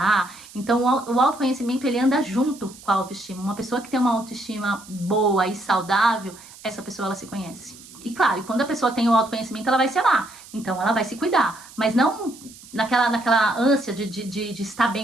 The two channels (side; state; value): right; noise; hiss, 20 dB below the sound